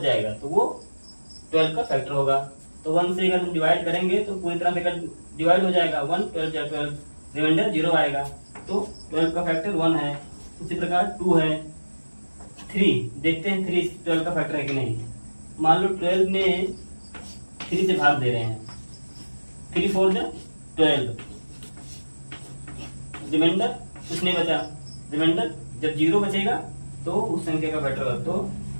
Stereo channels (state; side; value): inverted; both; correlation -1.00